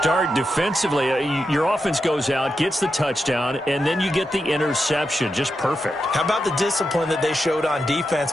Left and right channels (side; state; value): both; normal; correlation 0.87